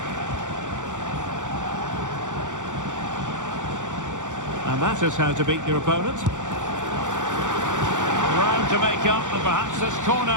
And that is how to beat your opponent. Round to make up, and perhaps this corner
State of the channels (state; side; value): late; left; 0.86 ms